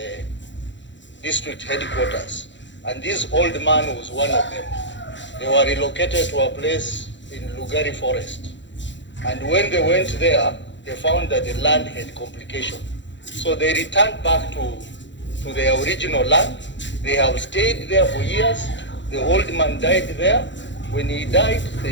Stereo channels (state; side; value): late; right; 0.53 ms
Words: district headquarters. And this old man was one of them. They were relocated to a place in Lugari Forest. And when they went there, they found that the land had complication. So they returned back to their original land. They have stayed there for years. The old man died there. When he died,